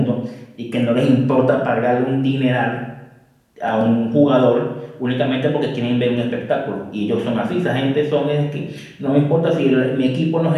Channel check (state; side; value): identical; both; correlation 1.00